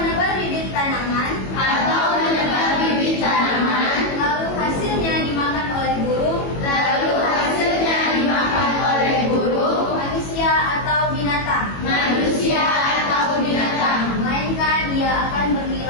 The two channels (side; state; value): right; late; 21 ms